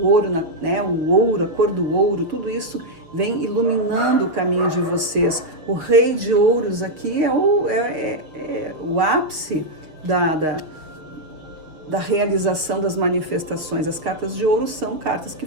ouro, né? O ouro, a cor do ouro, tudo isso vem iluminando o caminho de vocês. O Rei de Ouros aqui é o ápice da realização das manifestações. As cartas de ouro são cartas que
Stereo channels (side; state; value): left; late; 6.5 ms